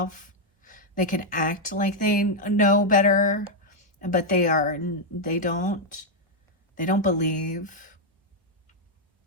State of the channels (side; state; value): both; normal; correlation -0.01